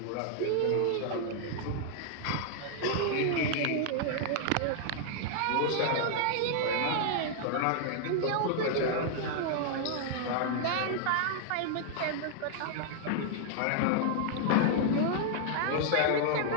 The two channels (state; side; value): different; both; correlation -0.01